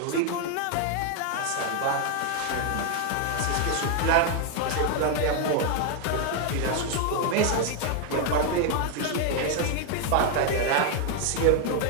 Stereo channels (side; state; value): both; different; correlation 0.00